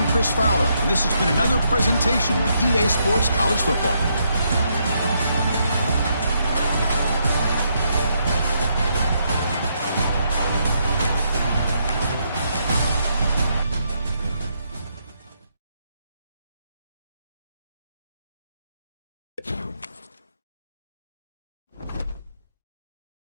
Chris Fowler, and this has been another presentation of EA Sports College Football.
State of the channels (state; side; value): inverted; both; correlation -0.76